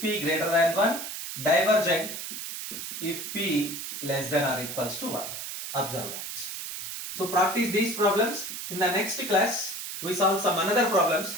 greater than 1, divergent if p less than or equals to 1. Observe that. So practice these problems. In the next class, we solve some another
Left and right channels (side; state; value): right; noise; hiss, 7 dB below the sound